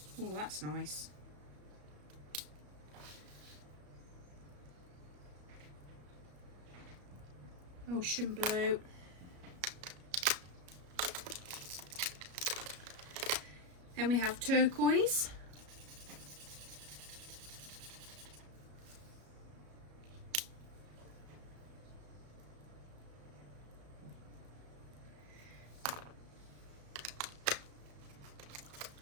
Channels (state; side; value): late; left; 34 ms